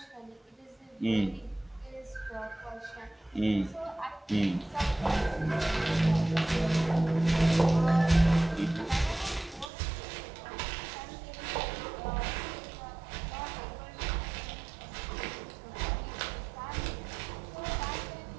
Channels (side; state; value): left; drops out; at 9.7 s